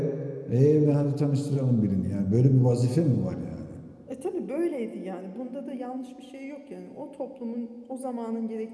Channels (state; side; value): identical; both; correlation 1.00